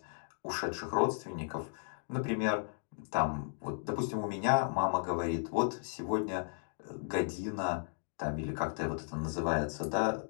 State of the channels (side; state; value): right; silent; digital silence